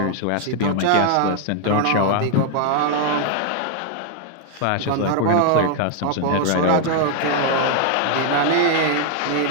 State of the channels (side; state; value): both; different; correlation 0.00